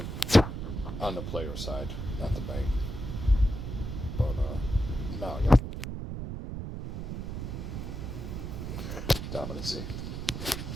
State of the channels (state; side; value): noise; right; rumble, 5 dB below the sound